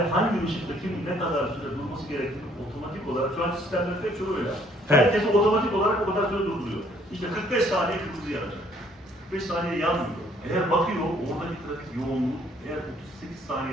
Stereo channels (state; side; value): normal; both; correlation 0.63